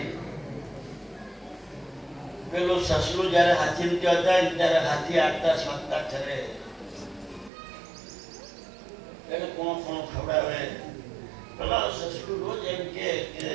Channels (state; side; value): drops out; left; at 7.5 s